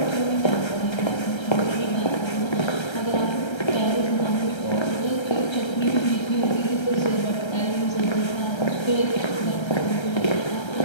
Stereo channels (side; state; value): right; late; 1.3 ms